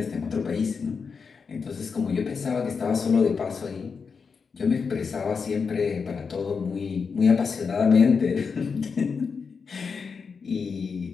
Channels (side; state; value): right; quieter; 5.5 dB